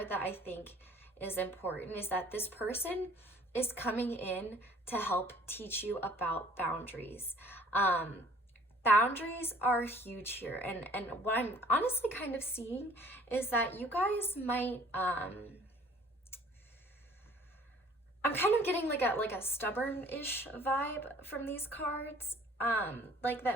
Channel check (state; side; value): normal; both; correlation 0.53